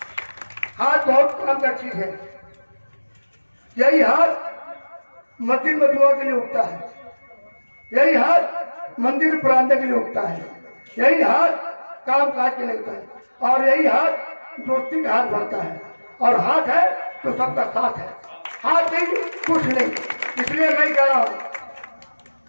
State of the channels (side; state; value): both; inverted; correlation -1.00